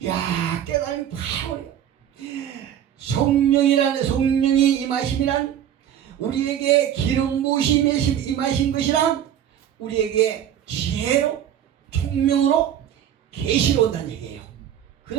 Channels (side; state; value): left; quieter; 10.1 dB